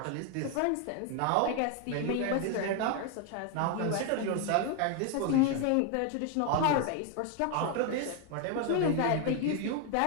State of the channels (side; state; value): both; different; correlation 0.01